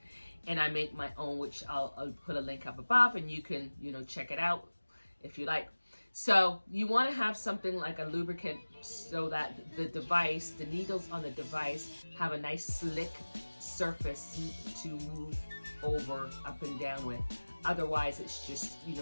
and I make my own, which I'll put a link up above, and you can, you know, check it out if you like. So you want to have something like a lubricant so that the needles on the device have a nice slick surface to move over, up and down with. Otherwise, it's just, you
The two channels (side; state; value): both; inverted; correlation -1.00